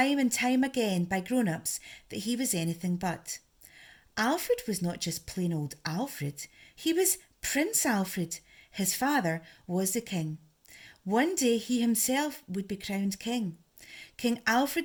and time again by grown-ups that he was anything but. Alfred was not just plain old Alfred, he was Prince Alfred. His father was the king. One day he himself would be crowned king. King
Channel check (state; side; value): identical; both; correlation 1.00